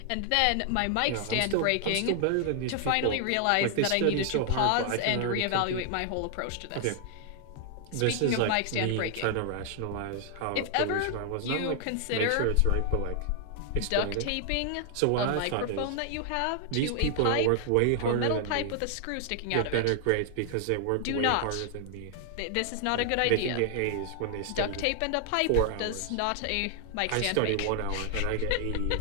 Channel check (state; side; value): different; both; correlation 0.00